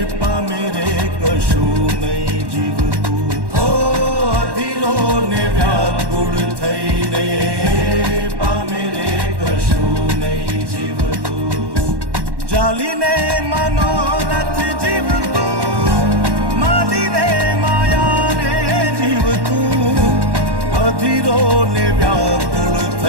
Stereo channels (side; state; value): left; late; 1.1 ms